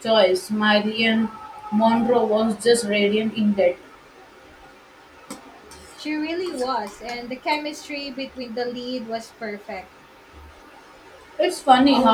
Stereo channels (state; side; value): identical; both; correlation 1.00